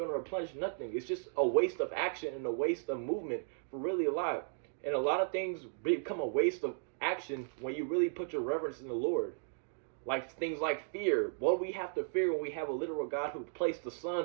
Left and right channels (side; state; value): left; silent; digital silence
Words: to replenish nothing. It's just a waste of action and a waste of movement for really a lot. And a lot of things become a waste of action when you really put your reverence in the Lord. Like things like fear. What do we have to fear when we have a literal God who placed the